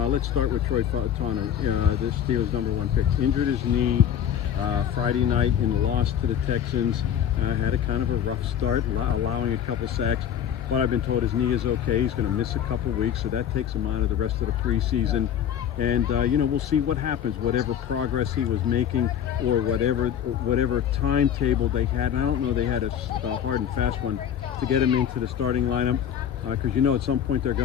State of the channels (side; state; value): right; quieter; 9.3 dB